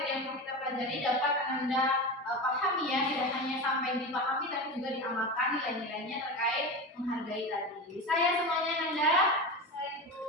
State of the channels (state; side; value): normal; both; correlation 0.24